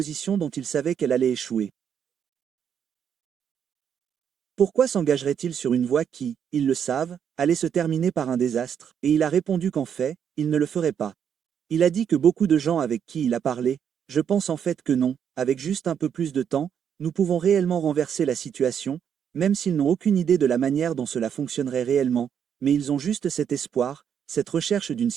dont il savait qu'elle allait échouer. Pourquoi s'engagerait-il sur une voie qui, ils le savent, allait se terminer par un désastre? Et il a répondu qu'en fait, il ne le ferait pas. Il a dit que beaucoup de gens avec qui il a parlé, je pense en fait que non, avec juste un peu plus de temps, nous pouvons réellement renverser la situation, même s'ils n'ont aucune idée de la manière dont cela fonctionnerait réellement, mais ils ont juste cet espoir, cette recherche d'une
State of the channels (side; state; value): left; quieter; 8.2 dB